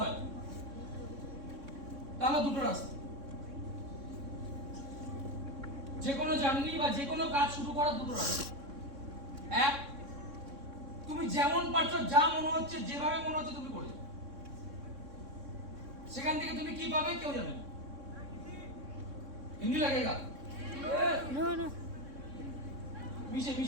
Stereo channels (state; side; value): late; left; 3.6 ms